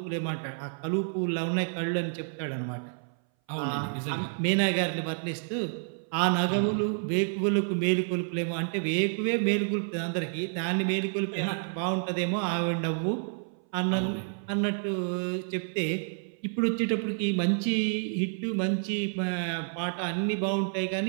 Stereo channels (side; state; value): left; silent; 58 dB below the other